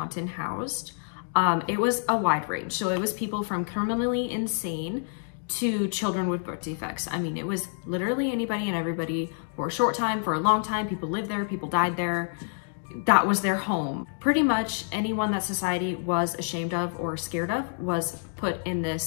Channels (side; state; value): right; silent; 60 dB below the other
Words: housed, it was a wide range. So it was people from criminally insane to children with birth defects. I mean, it was literally anybody and everybody for a short time, for a long time. People lived there, people died there. That was their home. Pretty much anyone that society was ashamed of or scared of was put in